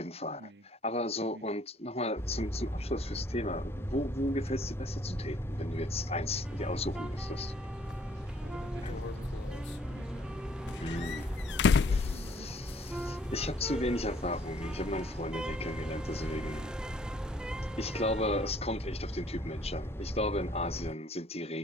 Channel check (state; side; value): normal; both; correlation 0.61